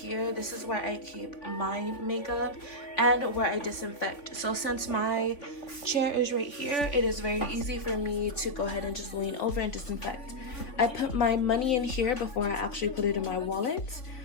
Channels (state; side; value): late; right; 3.5 ms